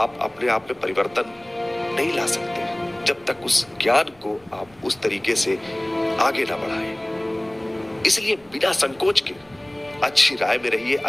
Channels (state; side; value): noise; right; rumble, 29 dB below the sound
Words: अपने आप में परिवर्तन नहीं ला सकते जब तक उस ज्ञान को आप उस तरीके से आगे ना बढ़ाएं। इसलिए बिना संकोच के अच्छी राय में रहिए,